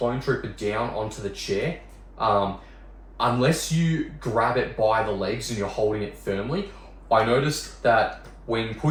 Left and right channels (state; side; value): identical; both; correlation 1.00